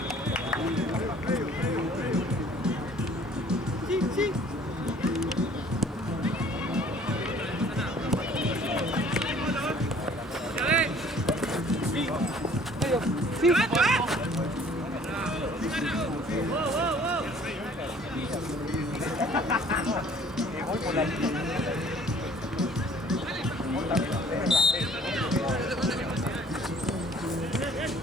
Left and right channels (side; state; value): both; normal; correlation 0.54